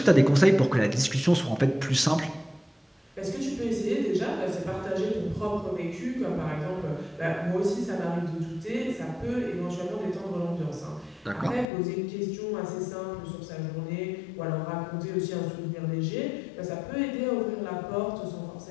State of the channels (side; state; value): right; drops out; at 11.7 s